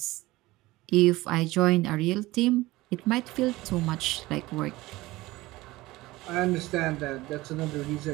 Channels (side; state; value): left; quieter; 19.2 dB